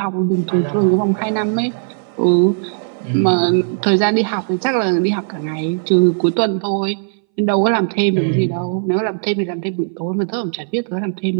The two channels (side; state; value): left; silent; 63 dB below the other